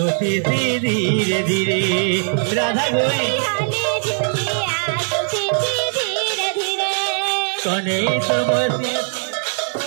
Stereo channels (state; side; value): silent; left; 66 dB below the other